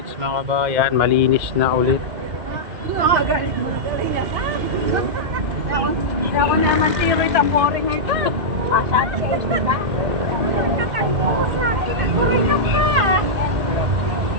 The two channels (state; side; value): late; left; 1.8 ms